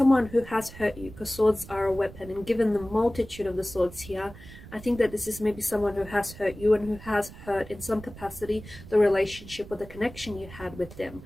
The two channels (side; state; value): right; noise; rumble, 16 dB below the sound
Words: who has hurt you, because swords are a weapon, and given the multitude of the swords here, I think that this is maybe someone who has hurt you and who has hurt in some capacity the relationship or the connection you had with them.